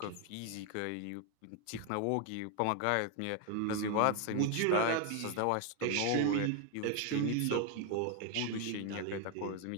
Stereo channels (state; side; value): different; both; correlation 0.01